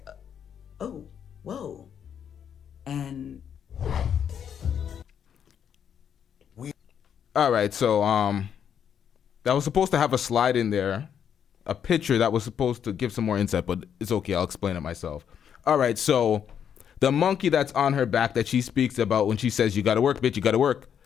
oh, whoa. And all right, so that was supposed to have a slide in there, a picture that was supposed to give some more insight, but it's okay, I'll explain it myself. All right, so the monkey that's on her back that she speaks about when she says, you gotta work, bitch, you gotta work.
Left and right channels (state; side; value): quieter; right; 8.4 dB